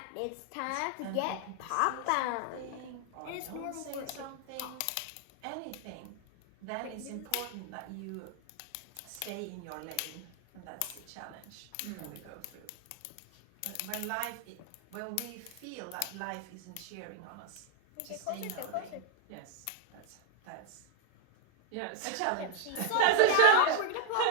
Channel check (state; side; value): different; both; correlation 0.00